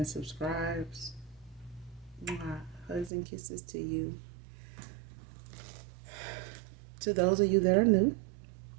subscribes. Mwah. Hugs and kisses to you. To those of you that are new,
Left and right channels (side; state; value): left; drops out; at 3.1 s